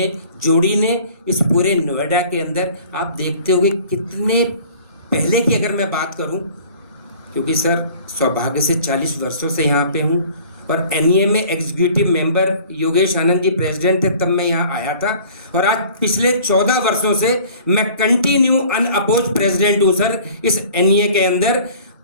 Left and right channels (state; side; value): inverted; both; correlation -0.49